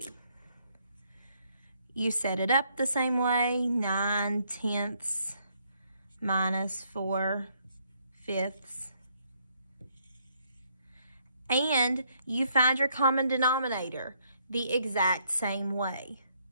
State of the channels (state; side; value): inverted; both; correlation -0.71